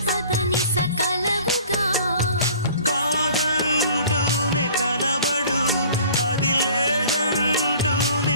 సకలవుగా కాదంటూనే కలబడు అది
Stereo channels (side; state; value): both; inverted; correlation -0.48